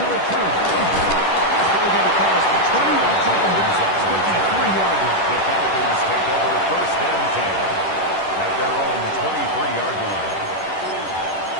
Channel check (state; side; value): late; right; 10 ms